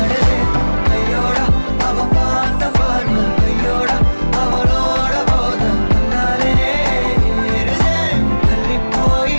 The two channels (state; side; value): inverted; both; correlation -1.00